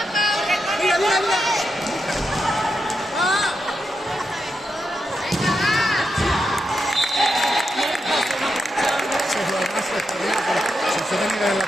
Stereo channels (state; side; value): normal; both; correlation 0.85